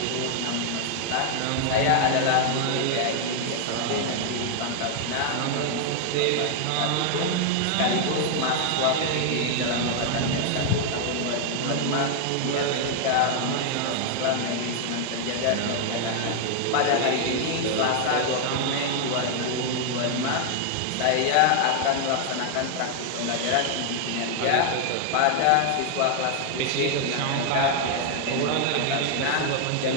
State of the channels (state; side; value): different; both; correlation 0.00